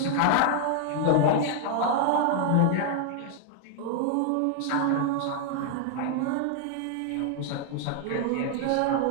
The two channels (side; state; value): both; different; correlation 0.00